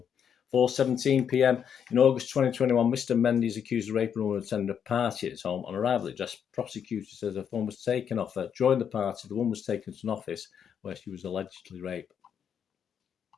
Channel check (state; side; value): quieter; right; 8.0 dB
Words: 4:17 p.m. In August 2021, Mr. Mendy is accused of raping a woman attending a party at his home. On arrival at the address, prosecutors says her phone was taken off her. During the party, the woman was taken to an office where she was allegedly raped.